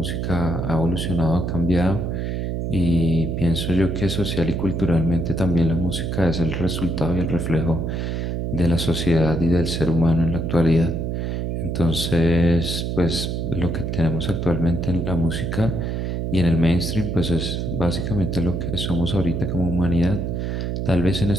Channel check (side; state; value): right; noise; hum, 2 dB below the sound